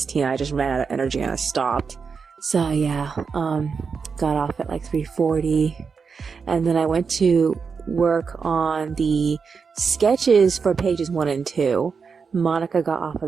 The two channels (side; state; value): left; quieter; 5.5 dB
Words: team, I just ran out of energy and I stopped. So yeah, got off at like 3:40, and then I went to work on the sketches for pages 1 and 2. Monica got off of